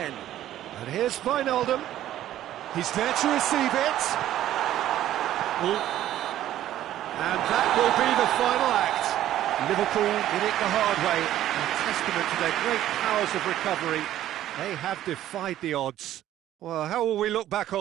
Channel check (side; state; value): left; quieter; 12.8 dB